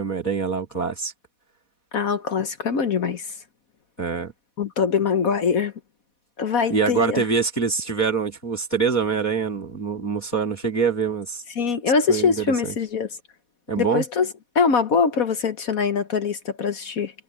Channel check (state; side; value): late; right; 4.1 ms